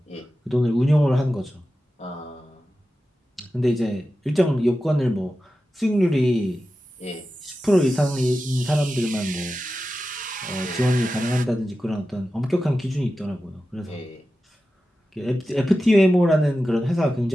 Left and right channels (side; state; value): both; normal; correlation 0.93